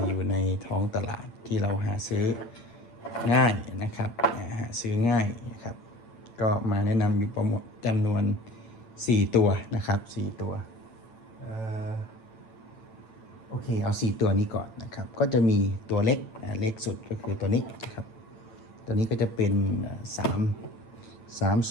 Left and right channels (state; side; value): late; right; 8.9 ms